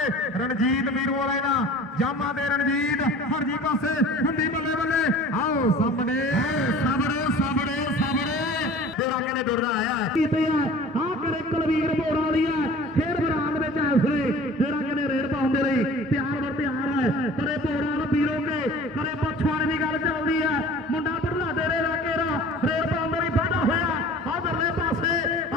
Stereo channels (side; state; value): both; normal; correlation 0.44